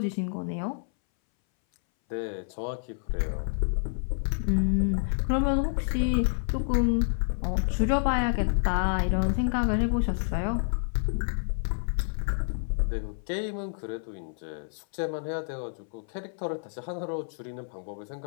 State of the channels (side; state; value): right; silent; 59 dB below the other